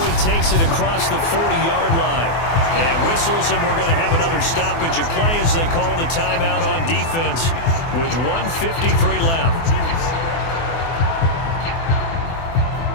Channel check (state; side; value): late; right; 24 ms